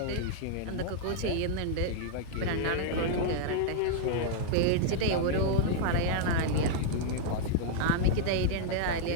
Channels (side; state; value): both; different; correlation -0.01